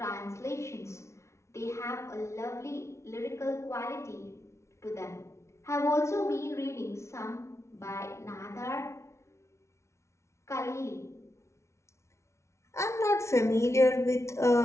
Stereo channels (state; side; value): late; right; 0.13 ms